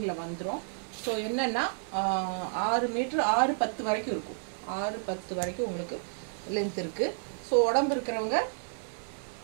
வந்துடும். ஸோ என்னென்னா 6 மீட்ரு 6-10 வரைக்கும் இருக்கும். 6-10 வரைக்கும் உங்களுக்கு லென்த் இருக்குது. ஸோ உடம்பு இருக்கிறவங்க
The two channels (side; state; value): left; silent; digital silence